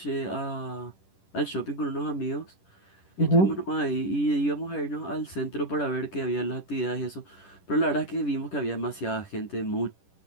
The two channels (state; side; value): late; right; 10 ms